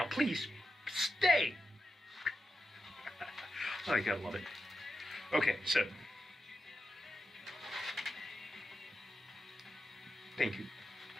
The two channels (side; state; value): both; normal; correlation 0.89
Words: please, stay. Oh, I gotta love it. Okay, so. Thank you.